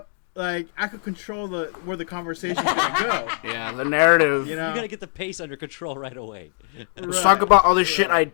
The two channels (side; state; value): right; silent; 64 dB below the other